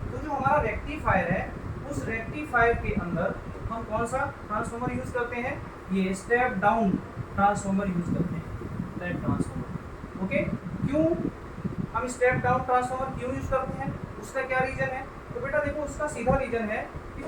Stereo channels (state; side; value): identical; both; correlation 1.00